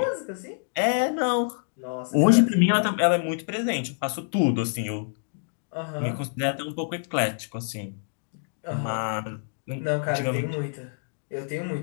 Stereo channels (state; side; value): silent; right; digital silence